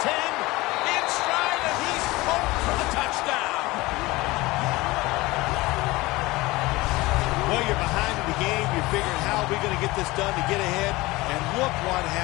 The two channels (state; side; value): quieter; right; 20.7 dB